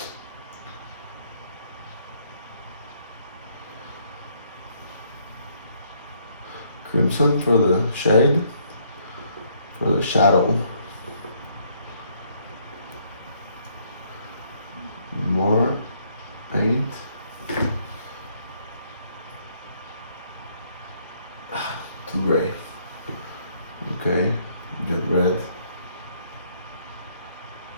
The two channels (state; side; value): inverted; both; correlation -0.68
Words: Crimson for the shade, for the shadow. More paint. Too gray. Okay, get red.